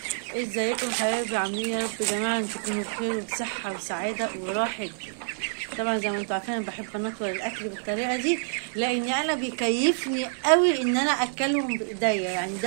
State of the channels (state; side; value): silent; left; digital silence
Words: ازيكم حبايبي؟ عاملين يا رب يا جماعة ان تكونوا بخير وبصحة وسعادة وراحة. طبعا زي ما انتوا عارفين انا بحب انطور الاكل بالطريقة دي، لان انا بيكيفني قوي ان انا اكلهم بايديا، يعني